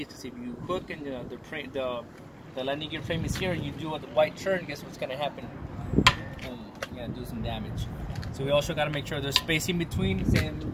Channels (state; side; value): identical; both; correlation 1.00